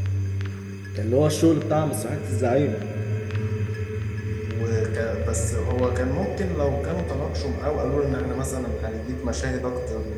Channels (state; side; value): identical; both; correlation 1.00